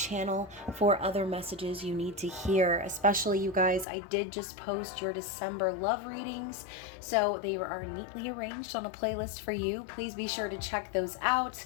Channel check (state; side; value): drops out; right; at 3.9 s